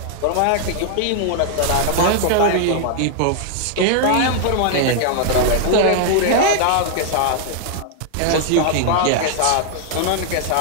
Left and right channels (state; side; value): different; both; correlation -0.01